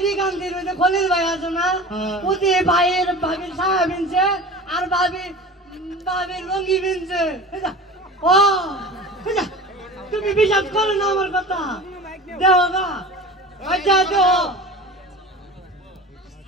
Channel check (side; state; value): both; normal; correlation 0.36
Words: গান্ধীর ওই যে খলিল ভাই আছে না ওতে ভাইয়ের ভাবির সায়া বিনছে আর ভাবির লঙ্গি বিনছে ও তুমি বিশ্বাস করো না আমার কথা দেও না আচ্ছা দেও